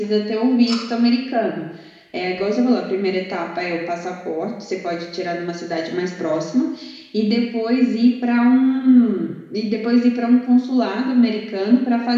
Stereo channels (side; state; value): both; identical; correlation 1.00